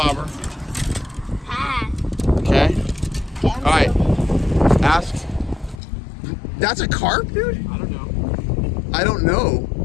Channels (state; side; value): drops out; right; at 5.8 s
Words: Okay? All right. Ask. That's a carp, dude? I don't know. I don't know.